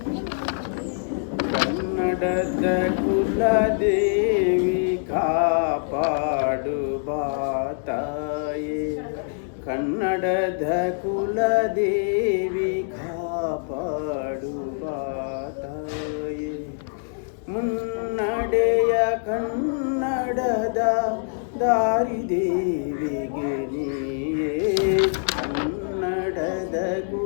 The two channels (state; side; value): silent; right; digital silence